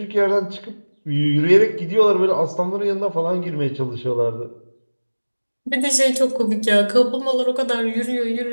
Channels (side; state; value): both; inverted; correlation -1.00